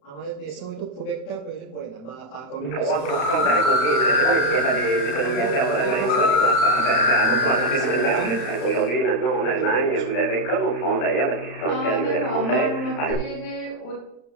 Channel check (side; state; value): right; late; 35 ms